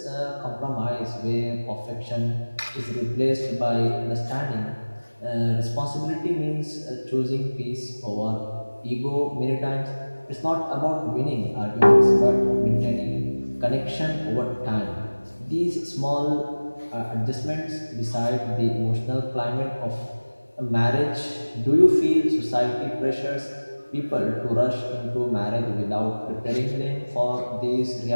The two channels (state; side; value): inverted; both; correlation -1.00